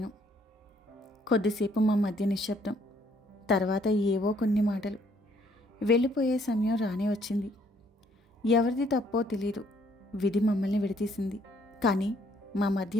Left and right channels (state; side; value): normal; both; correlation 0.65